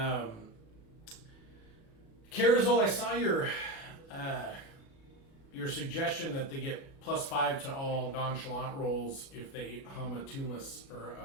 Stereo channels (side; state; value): right; late; 37 ms